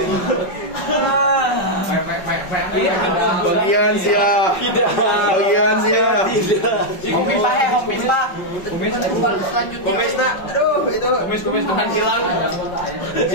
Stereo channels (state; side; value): late; right; 5.3 ms